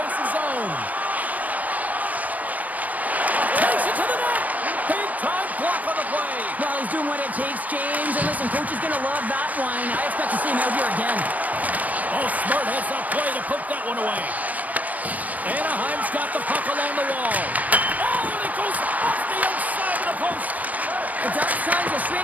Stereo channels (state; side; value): late; left; 0.074 ms